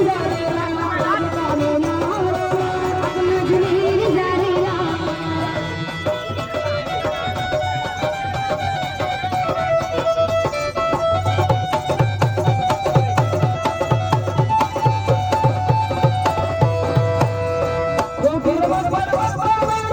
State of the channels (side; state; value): both; identical; correlation 1.00